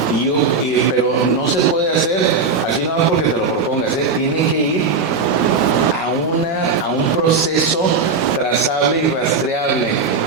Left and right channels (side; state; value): left; quieter; 4.3 dB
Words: Pero no se puede hacer así nada más porque te lo propongas, tiene que ir a un proceso trazable y rastreable